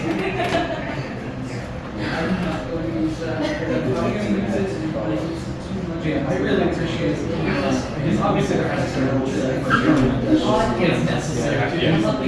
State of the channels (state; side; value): identical; both; correlation 1.00